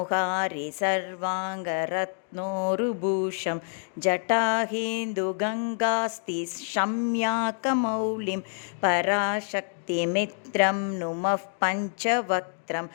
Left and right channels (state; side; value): silent; right; 60 dB below the other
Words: சர்வாங்கரத்னோருபூஷம் ஜட்டாஹேந்துகங்காஸ்தி ஷம்யாகமௌலிம் பராசக்திமித்ரம் நுமः பஞ்சவக்த்ரம்